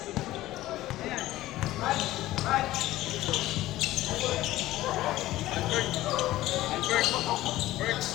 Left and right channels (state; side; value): quieter; right; 16.0 dB